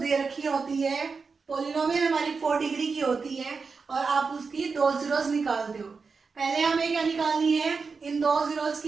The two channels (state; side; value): quieter; left; 4.8 dB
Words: रखी होती है, पॉलिनोमियल हमारी 4 डिग्री की होती है, और आप उसकी 2 जीरोस निकालते हो। पहले हमें क्या निकालनी है? इन 2 जीरोस